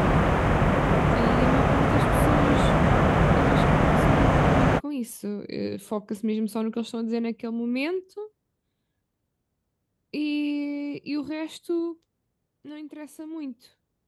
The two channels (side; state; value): both; identical; correlation 1.00